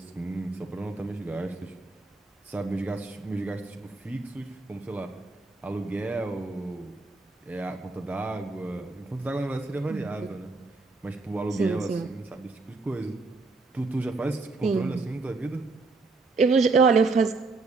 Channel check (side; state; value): left; quieter; 3.7 dB